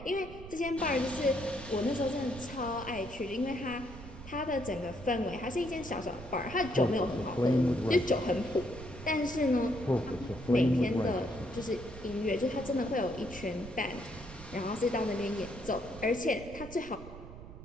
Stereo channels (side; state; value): right; noise; rumble, 14 dB below the sound